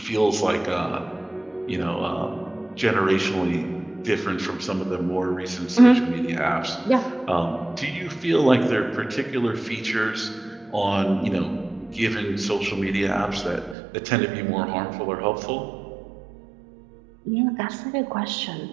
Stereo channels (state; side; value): drops out; left; at 13.8 s